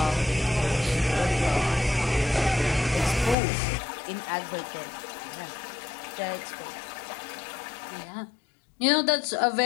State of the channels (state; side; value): drops out; right; at 3.4 s